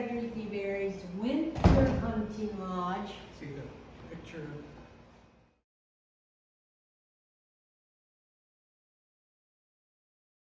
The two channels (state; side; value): identical; both; correlation 1.00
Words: Debary's Winter Hunting Lodge. See the picture.